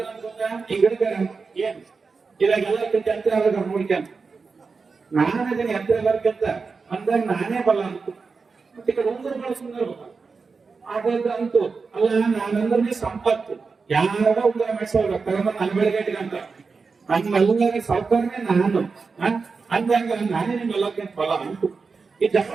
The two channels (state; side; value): quieter; left; 4.7 dB